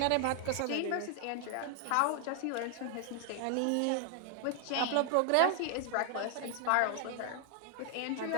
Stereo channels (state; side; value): different; both; correlation 0.00